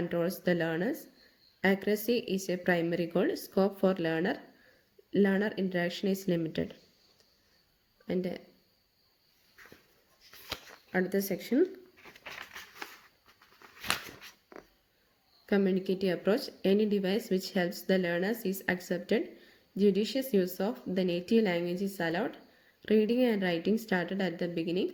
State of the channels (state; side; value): identical; both; correlation 1.00